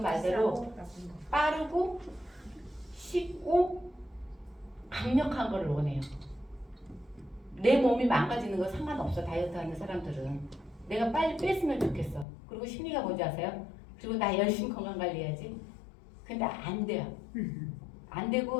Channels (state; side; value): drops out; right; at 12.2 s